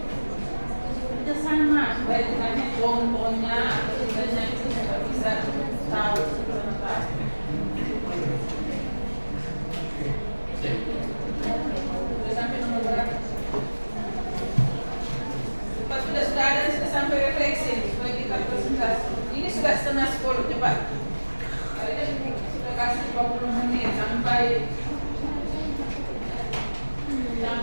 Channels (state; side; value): inverted; both; correlation -1.00